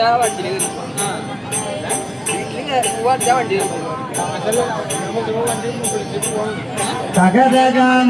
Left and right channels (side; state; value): both; identical; correlation 1.00